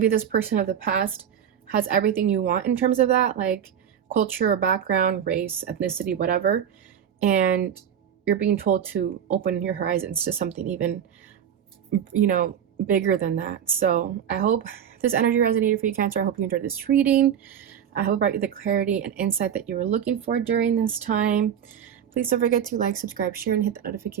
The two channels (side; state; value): left; quieter; 8.9 dB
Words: this person of the past has everything you want in terms of that, like culture or background, race, ethnicity, whatever. And you're being told to open your horizons to something even, bigger than that. So I hope this energy resonated for you, Cancer. I hope you enjoyed this reading. I hope it brought you the clarity and insight that you were looking for during this time. Please don't forget to like, subscribe, share, and hit the